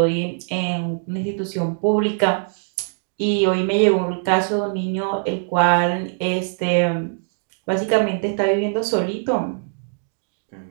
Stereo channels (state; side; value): silent; left; digital silence